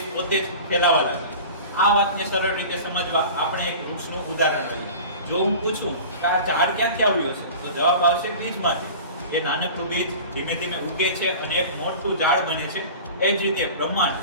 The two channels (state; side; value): inverted; both; correlation -0.37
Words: પોતે જ ફેલાવા લાગી. આ વાતને સરળ રીતે સમજવા આપણે એક વૃક્ષનું ઉદાહરણ લઈએ. જો હું પૂછું કે આ ઝાડ ક્યાંથી આવ્યો છે, તો જવાબ આવશે બીજમાંથી. એ નાનકડું બીજ ધીમે ધીમે ઉગે છે અને એક મોટું ઝાડ બને છે. એ જ રીતે